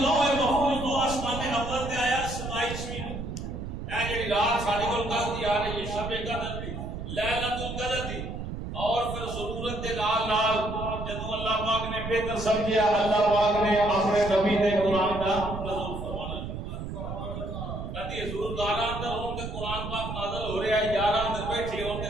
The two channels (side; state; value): right; noise; rumble, 7 dB below the sound